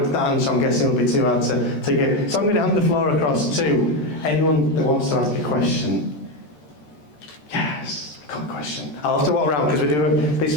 answer, I'm guessing, would be too hard to give. So I'm going to hand the floor across to anyone that wants to ask a question. Yes, I've got a question. I'll have to walk around, because we do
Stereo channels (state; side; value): late; right; 13 ms